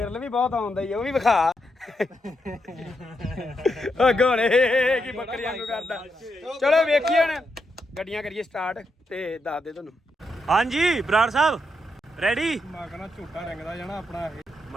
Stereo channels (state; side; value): normal; both; correlation 0.82